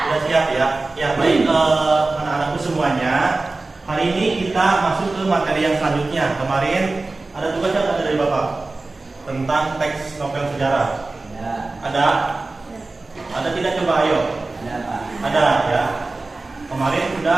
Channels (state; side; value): quieter; left; 3.3 dB